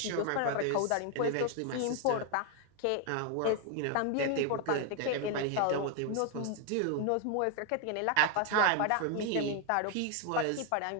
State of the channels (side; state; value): both; different; correlation 0.01